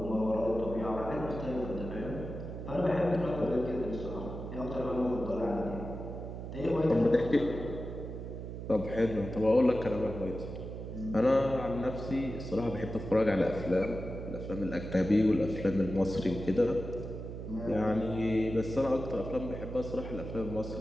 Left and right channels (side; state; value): right; noise; hum, 8 dB below the sound